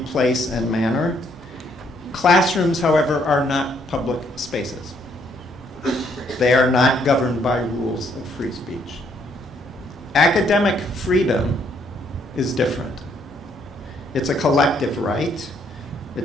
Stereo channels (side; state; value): both; normal; correlation 0.69